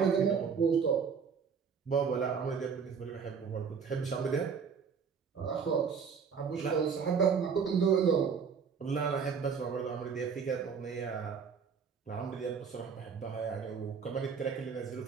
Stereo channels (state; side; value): quieter; left; 6.2 dB